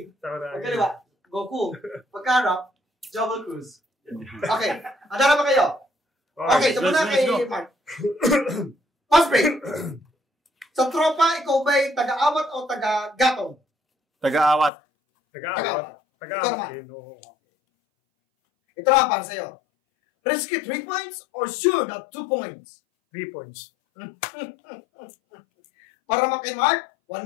Sakuragi. Pagkaliwa, Goku. Pagkarap, Joggle Cruise. Okay. Handa na ba kayo? Okay, so muna kay Mark. Fast break. Sa tropa, ikaw ba'y taga-awat o taga-gatong? Taga-awat. Taga-awat. Ito na para sa'yo. Risky 3 points or sure na 2 points? 3 points. Para kay Mark, 1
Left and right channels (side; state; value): right; drops out; at 14.7 s